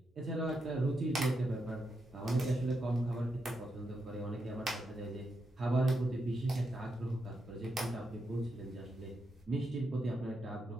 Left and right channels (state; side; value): normal; both; correlation 0.84